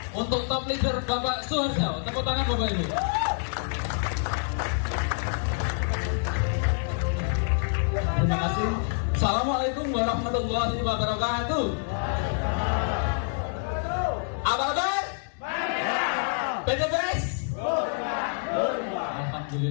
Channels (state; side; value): silent; right; digital silence